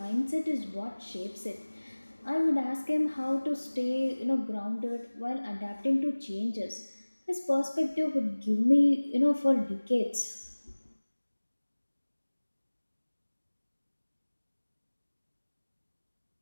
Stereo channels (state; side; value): inverted; both; correlation -1.00